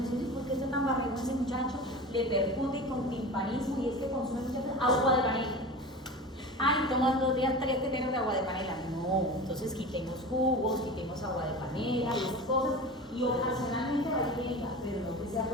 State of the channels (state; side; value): normal; both; correlation 0.32